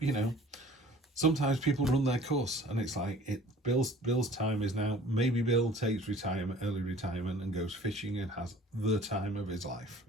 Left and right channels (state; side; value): normal; both; correlation 0.49